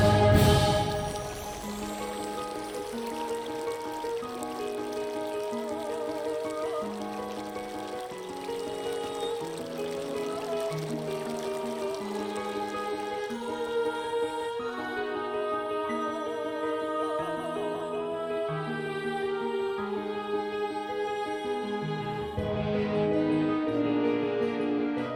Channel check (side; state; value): both; identical; correlation 1.00